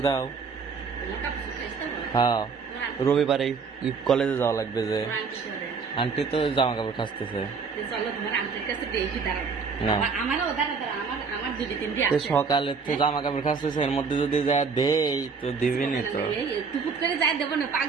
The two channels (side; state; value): left; quieter; 5.3 dB